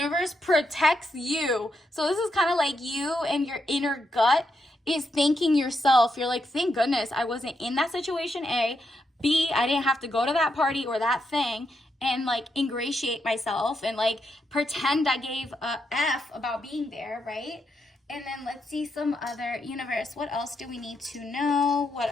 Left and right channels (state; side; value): normal; both; correlation 0.81